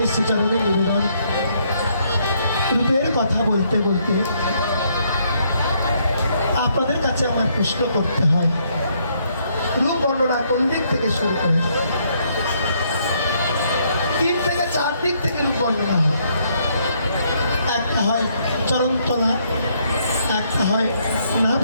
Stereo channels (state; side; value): inverted; both; correlation -0.71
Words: শ্রীচরণে নিবেদন। রূপের কথা বলতে বলতে আপনাদের কাছে আমার প্রশ্ন করতে হয়, রূপ বর্ণনা কোন দিক থেকে শুরু করে? 3 থেকে 4 দিক থেকে রূপ বর্ণনা হয়। একটা হয় চরণতলা, একটা হয়